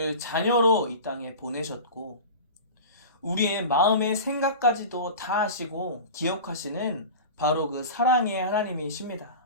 자녀로 이 땅에 보내셨고 우리의 마음의 생각까지도 다 아시고 기억하시는 바로 그 사랑의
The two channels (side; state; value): both; inverted; correlation -0.32